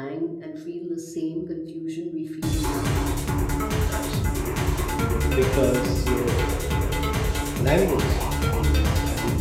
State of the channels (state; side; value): identical; both; correlation 1.00